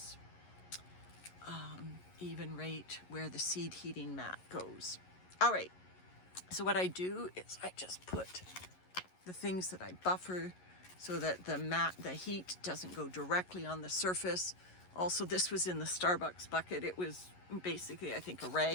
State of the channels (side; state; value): right; late; 11 ms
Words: Even rate where the seed heating mat goes. All right, so what I do is I just put the things that I buffer so that the heat doesn't go directly on the surface. Also, this was in the Starbucks bucket. It was basically, I think, a